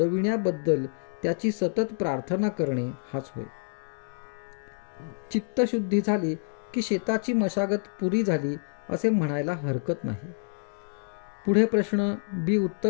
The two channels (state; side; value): silent; right; 60 dB below the other